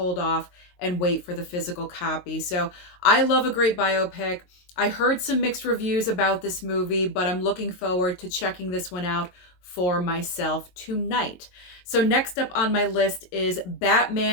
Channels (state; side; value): late; right; 22 ms